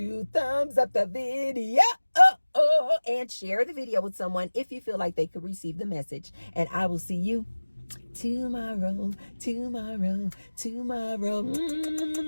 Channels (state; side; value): inverted; both; correlation -1.00